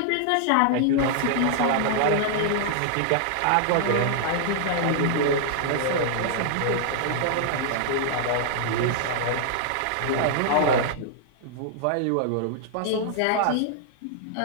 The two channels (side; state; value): both; different; correlation -0.01